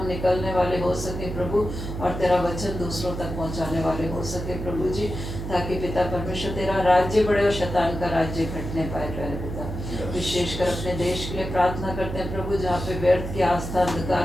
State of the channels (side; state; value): right; noise; hum, 6 dB below the sound